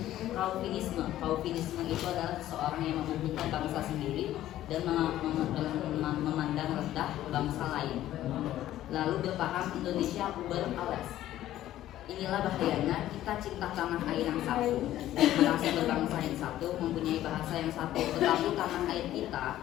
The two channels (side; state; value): right; quieter; 13.5 dB